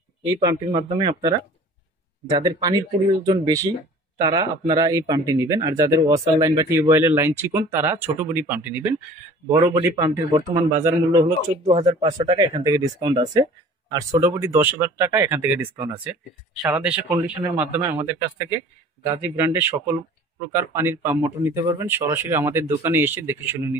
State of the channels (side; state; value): both; normal; correlation 0.46